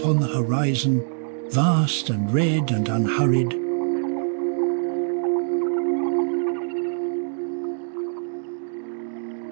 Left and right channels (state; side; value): silent; left; digital silence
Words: the horizon, vast and red and unhurried.